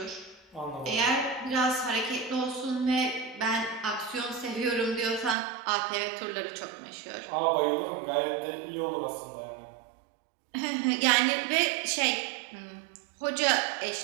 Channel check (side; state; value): left; drops out; at 5.4 s